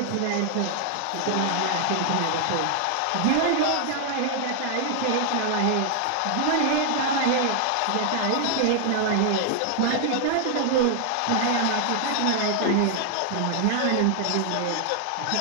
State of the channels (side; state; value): both; different; correlation 0.00